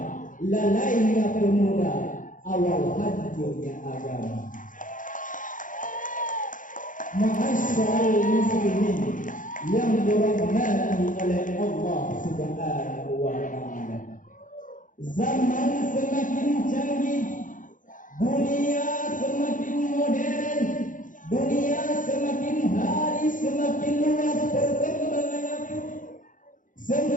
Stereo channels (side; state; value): right; late; 0.38 ms